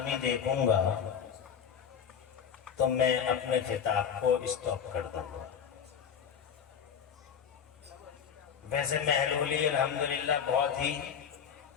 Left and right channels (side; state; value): right; quieter; 7.6 dB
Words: دیکھوں گا تو میں اپنے خطاب کو اسٹاپ کر دوں گا. ویسے محلولی الحمدللہ بہت ہی